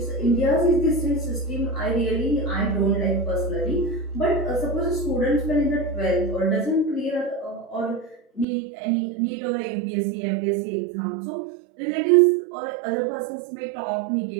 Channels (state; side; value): drops out; left; at 8.5 s